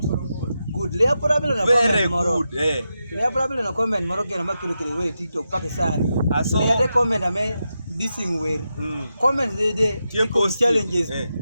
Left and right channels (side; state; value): both; inverted; correlation -0.88